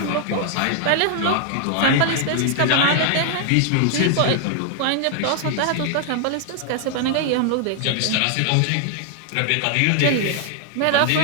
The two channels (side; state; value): both; different; correlation 0.00